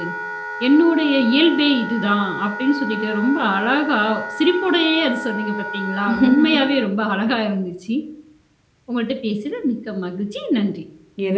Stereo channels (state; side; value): identical; both; correlation 1.00